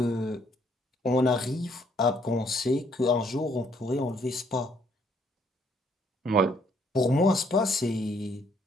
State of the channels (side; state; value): both; normal; correlation 0.67